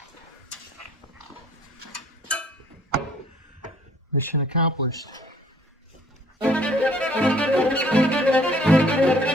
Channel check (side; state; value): both; normal; correlation 0.58